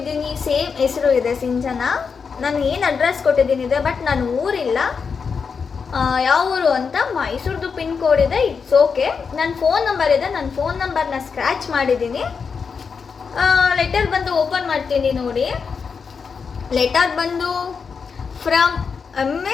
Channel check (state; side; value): quieter; right; 5.7 dB